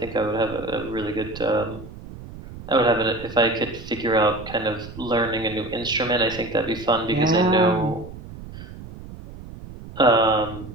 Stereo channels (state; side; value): noise; right; rumble, 14 dB below the sound